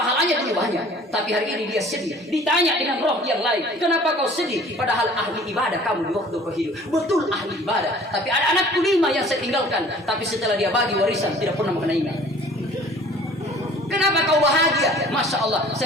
dulu banyak, tapi hari ini dia sedih. Ditanya dengan roh yang lain, kenapa kau sedih? Padahal ahli ibadah kamu di waktu kau hidup. Betul ahli ibadah, tapi ada anakku 5 yang saya tinggalkan, tapi setelah dia bagi warisan tidak pernah mengenainya. Kenapa kau bahagia? Masya Allah,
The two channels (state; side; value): normal; both; correlation 0.50